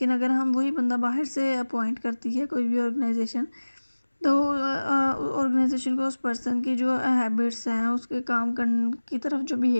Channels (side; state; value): both; inverted; correlation -1.00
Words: अगर हम वही बंदा बाहर से अपॉइंट करती है कोई भी ऑर्गेनाइजेशन, तो ऑर्गेनाइजेशन को उस पर्सन की जो हैबिट्स हैं, उसके काम करने की तरफ जो